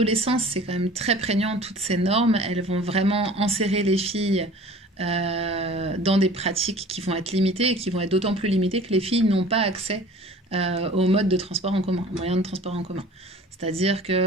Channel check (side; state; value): both; normal; correlation 0.45